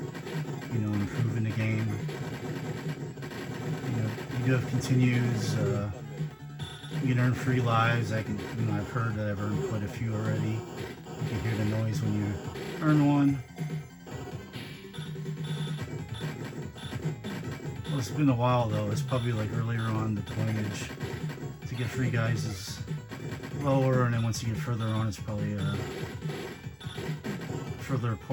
you know, improve in the game, you know, you do have continues, you can earn free lives. I can, you know, I've heard that I've earned quite a few already. You can hear the noise when you earn one. Well, it's been a while though. It's probably like earlier on the pointage to get free guys is lower, and then once you get further on, it's probably further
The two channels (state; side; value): identical; both; correlation 1.00